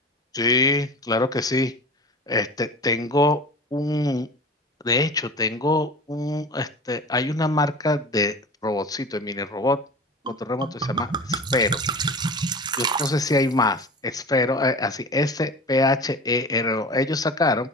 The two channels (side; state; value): both; normal; correlation 0.35